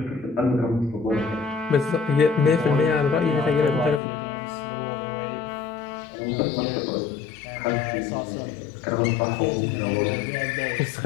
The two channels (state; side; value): drops out; right; at 4.0 s